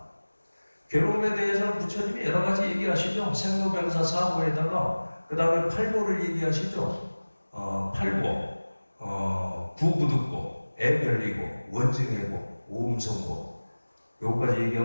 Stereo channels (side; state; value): both; inverted; correlation -1.00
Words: 괴로움에 대해서는 부처님이 여러 가지 얘기하시죠. 생로병사 사고에다가 그 다음에 팔고를 얘기하시죠. 팔고, 부부득고, 애별리고, 원증해고, 오음성고. 요거까지